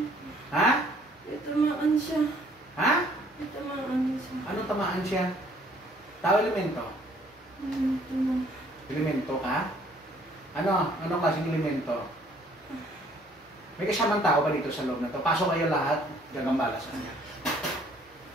Ha? May tamaan siya. Ha? May tamaan siya. Anong tamaan siya? Tao elemento? Ito na. Elemento ka? Ano? Anong klaseng elemento? May kasamang tao ba dito sa loob na to? Pasok kayo lahat, gagambala sa kanya.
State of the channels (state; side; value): normal; both; correlation 0.61